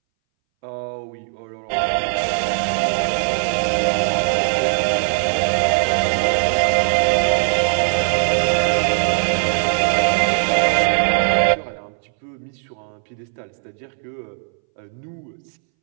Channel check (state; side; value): silent; left; 63 dB below the other